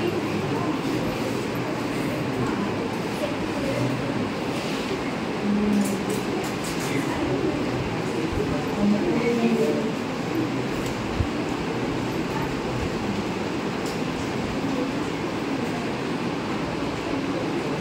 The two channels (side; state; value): both; identical; correlation 1.00